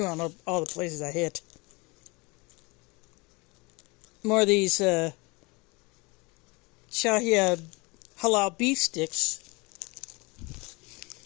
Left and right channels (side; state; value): right; quieter; 26.5 dB